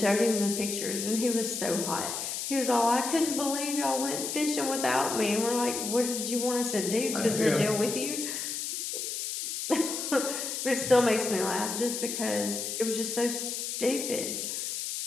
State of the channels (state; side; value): noise; left; hiss, 4 dB below the sound